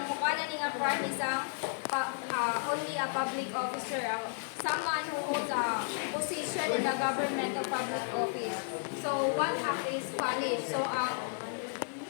only a public officer, someone who holds a position in the government or public office. So, one act is punished. So,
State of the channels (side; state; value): right; silent; 56 dB below the other